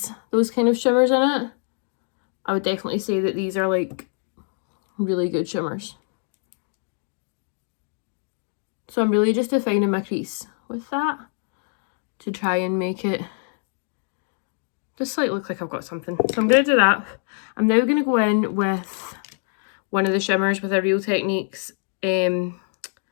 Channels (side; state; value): right; silent; 56 dB below the other